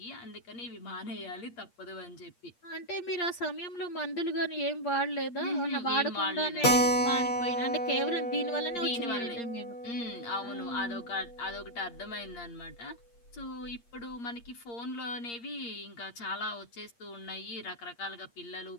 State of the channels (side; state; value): right; late; 8.5 ms